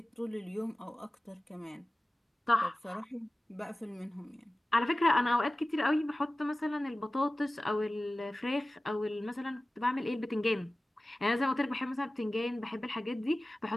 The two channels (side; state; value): both; normal; correlation 0.97